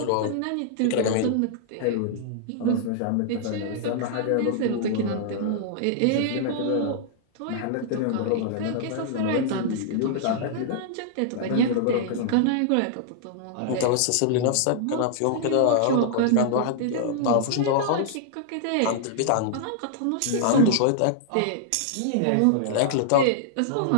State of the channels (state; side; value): different; both; correlation -0.01